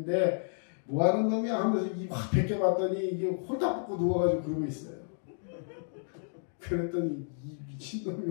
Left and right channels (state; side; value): silent; right; digital silence